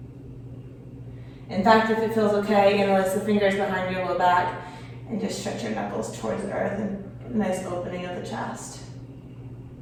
In fact, if it feels okay, you can release the fingers behind your low back and just stretch your knuckles towards the earth and get a nice opening of the chest.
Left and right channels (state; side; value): identical; both; correlation 1.00